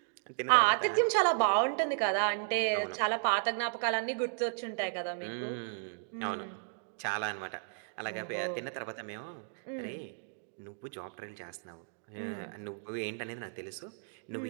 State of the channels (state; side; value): silent; left; digital silence